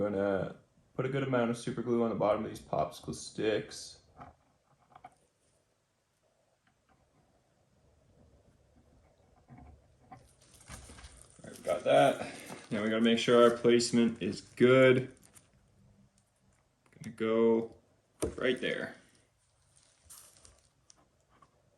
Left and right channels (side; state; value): both; identical; correlation 1.00